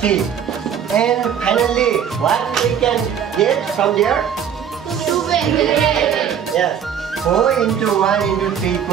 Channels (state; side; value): quieter; left; 8.4 dB